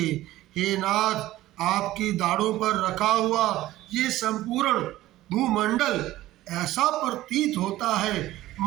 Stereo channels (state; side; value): quieter; left; 15.8 dB